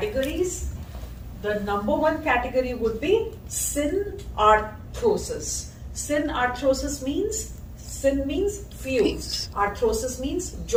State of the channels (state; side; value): identical; both; correlation 1.00